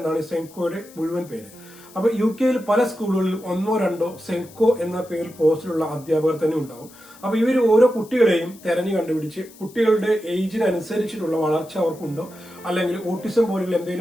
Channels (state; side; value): noise; left; hiss, 23 dB below the sound